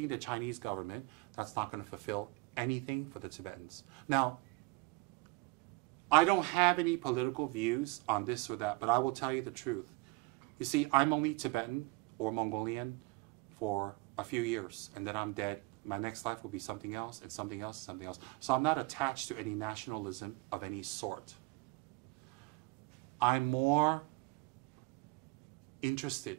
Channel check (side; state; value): left; quieter; 23.7 dB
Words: the Chinese government, that's not going to fulfill anything for the Tibetans. Now, I don't have any political views on this or that, but I will tell you the truth. You see, I'm only Tibetan or Mongolian for a few years, and then I'm dead. My next life will be something else, and something else, and something else. So I'm not attached to any nationalism of any sort. I'm more interested